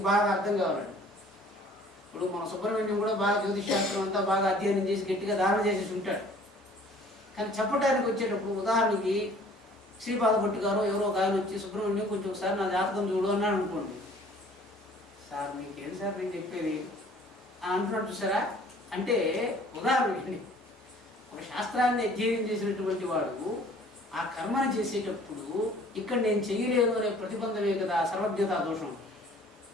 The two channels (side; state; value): both; normal; correlation 0.53